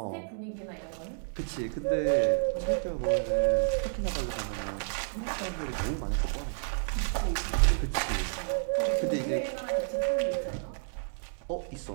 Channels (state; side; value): silent; left; digital silence